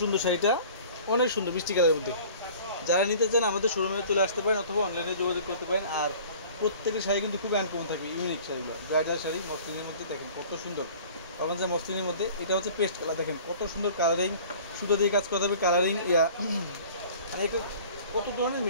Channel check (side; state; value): both; inverted; correlation -0.46